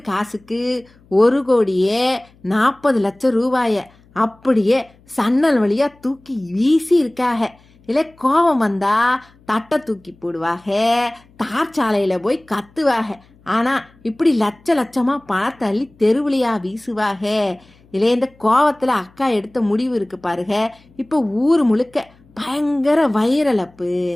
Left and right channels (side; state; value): left; noise; hum, 30 dB below the sound